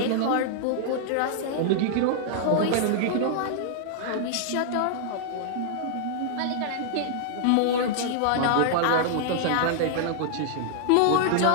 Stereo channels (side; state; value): both; different; correlation -0.01